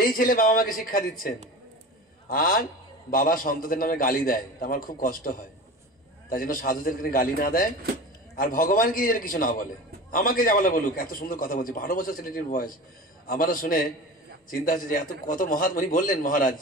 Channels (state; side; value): normal; both; correlation 0.33